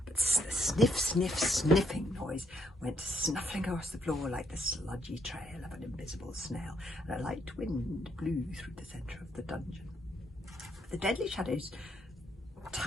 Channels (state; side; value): normal; both; correlation 0.74